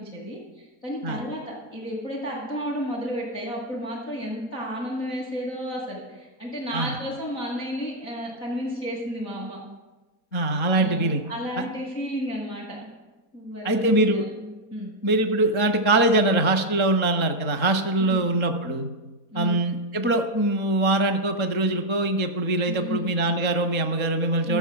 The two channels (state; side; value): late; right; 3.8 ms